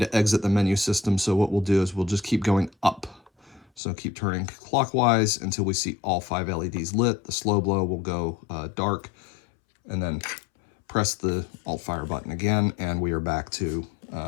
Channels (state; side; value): drops out; right; at 3.8 s